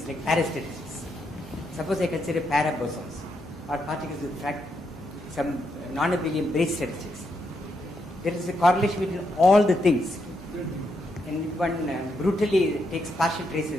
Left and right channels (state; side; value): normal; both; correlation 0.80